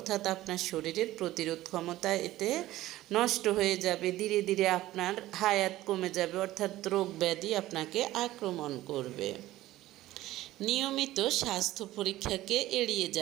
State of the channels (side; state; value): left; quieter; 15.8 dB